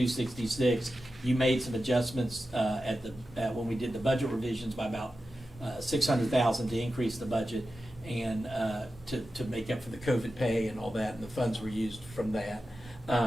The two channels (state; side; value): normal; both; correlation 0.92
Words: You made some adjustments when we did the budget revisions by about $600,000 to increase the budget and to make up for the COVID pay and all that, and the funds were used from that.